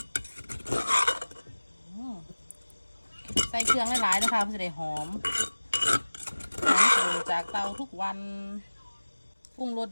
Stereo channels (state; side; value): inverted; both; correlation -1.00